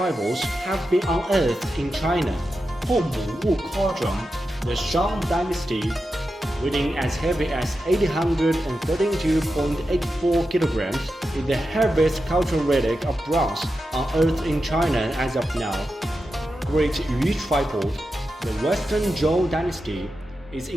have been unearthed in China. Hongmu cauldron, the Shang dynasty, weighing as heavy as 832.84 kilograms, is the heaviest cultural relic of bronze unearthed in China as of now. Great Yu tripod, the Western Zhou dynasty, is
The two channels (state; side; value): normal; both; correlation 0.90